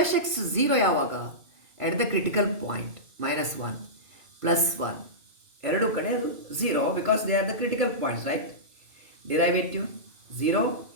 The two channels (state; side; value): late; left; 2.5 ms